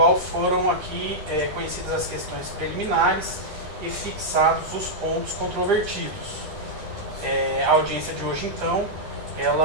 foram aqui conhecidas as questões preliminares e fixados os pontos controvertidos. A audiência de hoje, então,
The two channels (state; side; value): late; left; 9.8 ms